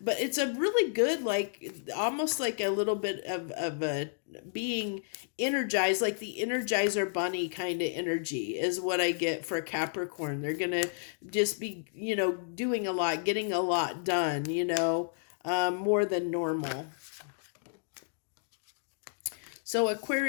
but it's a really good, like almost like a little bit of a being energized, like the Energizer Bunny kind of energy is what I get for Capricorn. They're going to just be, doing a lot, getting a lot done, more than normal. So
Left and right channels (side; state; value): right; silent; digital silence